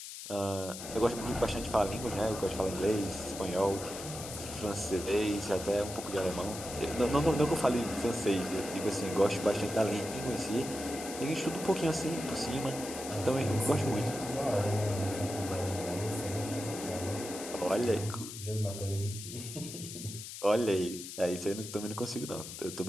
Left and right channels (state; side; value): noise; left; hiss, 10 dB below the sound